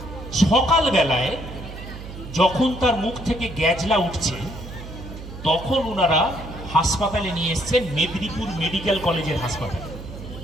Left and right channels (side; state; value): right; noise; hum, 12 dB below the sound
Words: সকাল বেলায় যখন তার মুখ থেকে গ্যাজলা উঠছে, তখন ওনারা হাসপাতালে নিয়ে এসছেন, মেদিনীপুর মেডিকেল কলেজের হাসপাতালে।